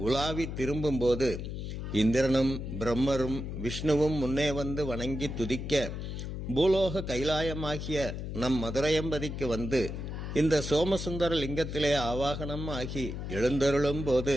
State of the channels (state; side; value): noise; left; hum, 6 dB below the sound